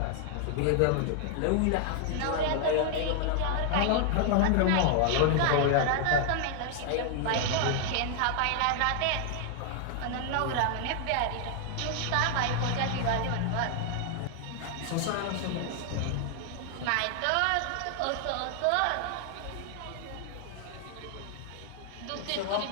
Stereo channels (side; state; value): both; different; correlation 0.00